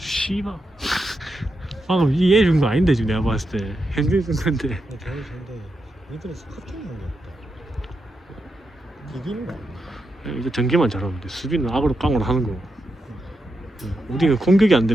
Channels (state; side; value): normal; both; correlation 0.86